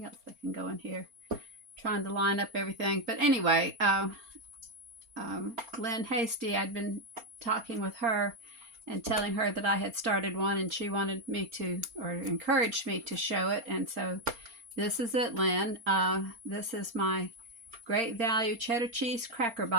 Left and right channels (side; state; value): left; late; 4.3 ms